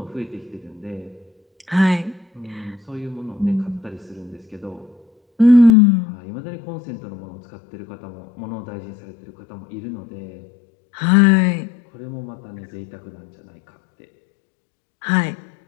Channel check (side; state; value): right; drops out; at 5.8 s